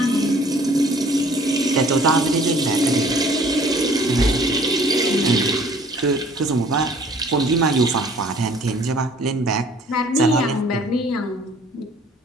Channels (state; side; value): normal; both; correlation 0.54